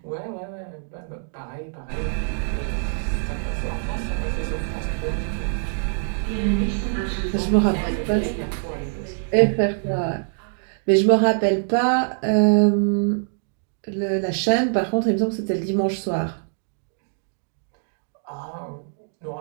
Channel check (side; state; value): left; silent; digital silence